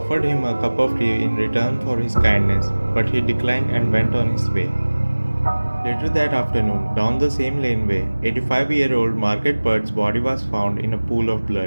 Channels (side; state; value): both; inverted; correlation -1.00